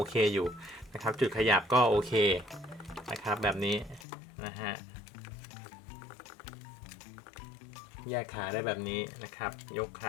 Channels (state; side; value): drops out; right; at 4.0 s